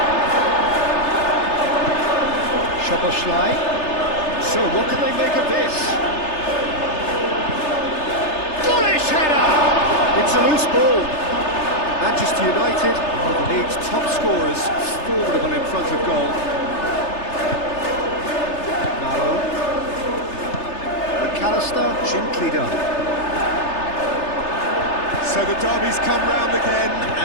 Szoboszlai. So what can they make of this? Bullish header! It's a loose ball. Manchester United are the league's top scorers, formidable in front of goal. Nalo. McAllister, gently done. So the derby's come round again,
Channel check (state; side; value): late; right; 3.3 ms